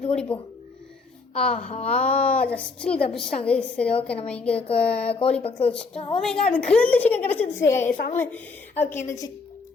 ஓடி போ. ஆஹா, ஜஸ்ட்டு தப்பிச்சிட்டாங்க. சரி, ஓகே நம்ம இங்கே கோழி பக்கத்தில் வச்சுட்டோம். அது கிரில் சிக்கன் கிடச்சிருச்சு சாமி. ஓகே, இந்த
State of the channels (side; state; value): right; quieter; 4.2 dB